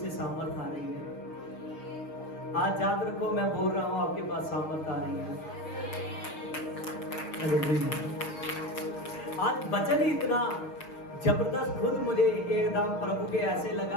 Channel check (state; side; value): late; right; 6.4 ms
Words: सामर्थ आ रही है। आज याद रखो, मैं बोल रहा हूं आपके पास सामर्थ आ रही है। आज वचन ही इतना जबरदस्त, खुद मुझे एकदम प्रभु के ऐसे